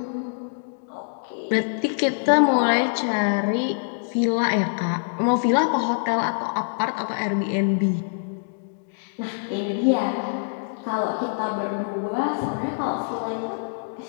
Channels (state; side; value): silent; right; digital silence